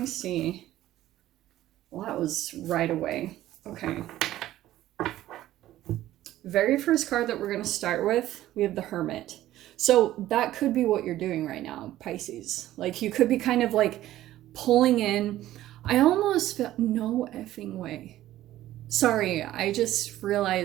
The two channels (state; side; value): quieter; left; 14.2 dB